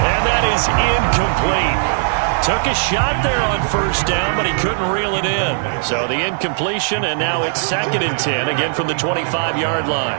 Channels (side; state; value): left; silent; digital silence